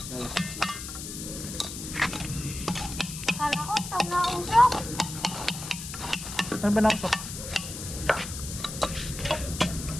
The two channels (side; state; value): left; noise; hiss, 8 dB below the sound